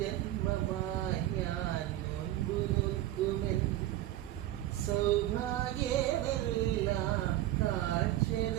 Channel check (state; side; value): quieter; left; 14.2 dB